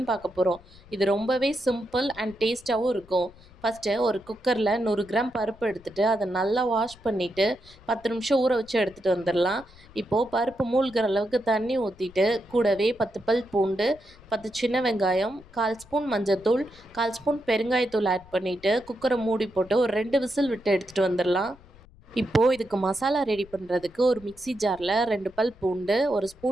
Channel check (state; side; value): noise; left; rumble, 24 dB below the sound